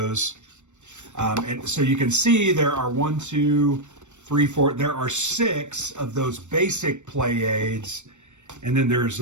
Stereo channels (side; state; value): left; late; 0.84 ms